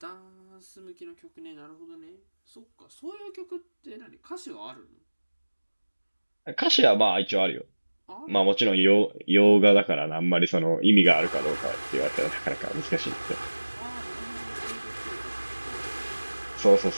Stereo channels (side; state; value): both; inverted; correlation -1.00